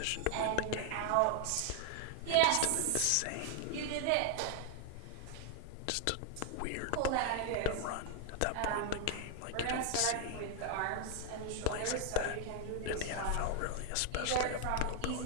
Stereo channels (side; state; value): both; different; correlation 0.00